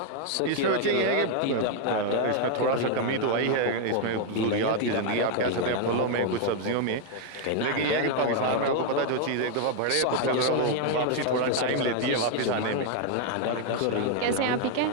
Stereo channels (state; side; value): different; both; correlation 0.00